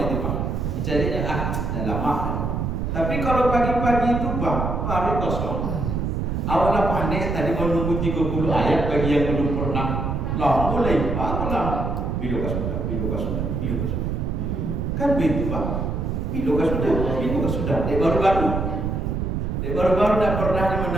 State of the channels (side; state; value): right; noise; rumble, 1 dB below the sound